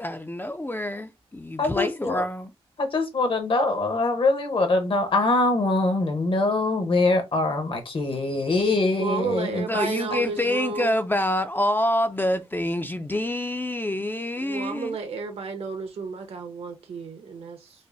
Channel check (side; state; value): both; normal; correlation 0.65